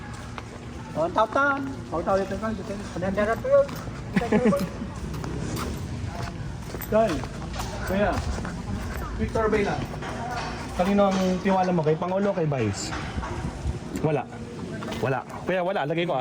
Oh, tawtan. Taw dito ka. Kanandara to yun. Dahil, kaya, quick survey lang. Kanino ang tiwala mo? Kay Pangulo o kay Vice? Wala. Kaya wala, lagay ko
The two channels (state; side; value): identical; both; correlation 1.00